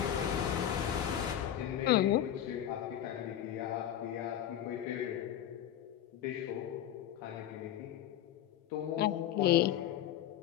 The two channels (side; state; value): right; quieter; 11.1 dB